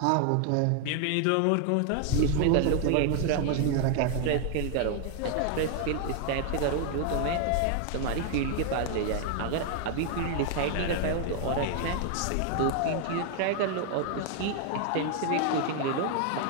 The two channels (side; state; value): both; different; correlation 0.00